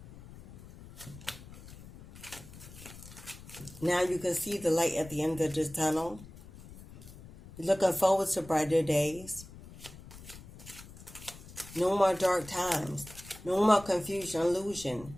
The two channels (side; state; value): left; noise; rumble, 17 dB below the sound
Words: Now you can see the light at the end of this tunnel. You're looking forward to brighter days. No more dark times. No more confusion, illusion.